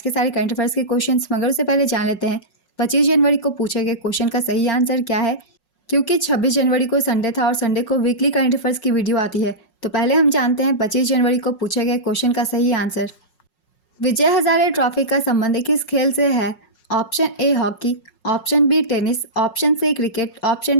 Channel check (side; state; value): right; late; 5.5 ms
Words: सारे करंट अफेयर्स के क्वेश्चन, मगर उससे पहले जान लेते हैं 25 जनवरी को पूछे गए क्वेश्चन का सही आंसर क्या है। क्योंकि 26 जनवरी को संडे था और संडे को वीकली करंट अफेयर्स की वीडियो आती है, तो पहले हम जानते हैं 25 जनवरी को पूछे गए क्वेश्चन का सही आंसर। विजय हजारे ट्रॉफी का संबंध किस खेल से है? Option A hockey, option B tennis, option C cricket, option